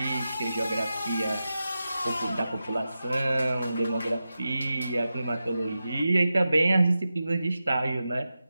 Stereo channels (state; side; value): inverted; both; correlation -0.92